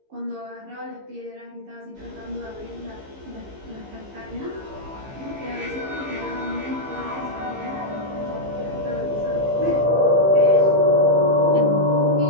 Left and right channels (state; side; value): late; left; 15 ms